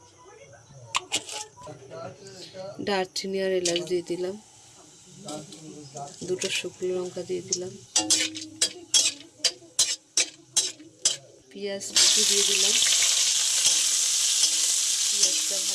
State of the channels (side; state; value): both; identical; correlation 1.00